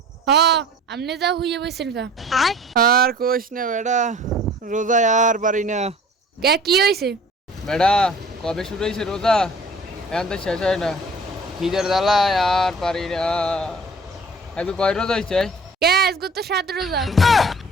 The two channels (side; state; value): both; normal; correlation 0.48